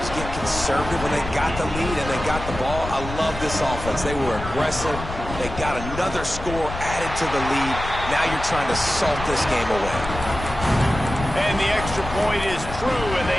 get conservative when they got the lead and they got the ball. I love this offense. They were aggressive. They got another score added to the lead. Now you're trying to salt this game away. And the extra point is true, and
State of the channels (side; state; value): left; noise; rumble, 8 dB below the sound